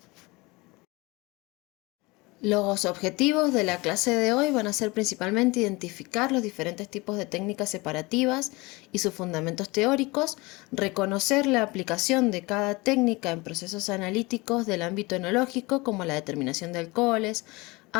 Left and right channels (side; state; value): right; quieter; 23.9 dB